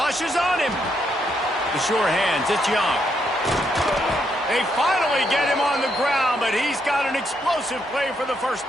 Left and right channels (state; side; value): normal; both; correlation 0.77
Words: is on him. The sure hands, it's Young. They finally get him on the ground, but he's got an explosive play for the first